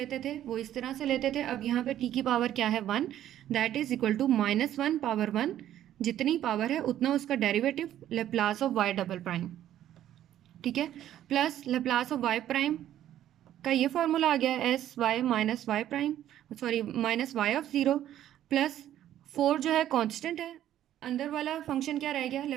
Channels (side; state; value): left; quieter; 11.9 dB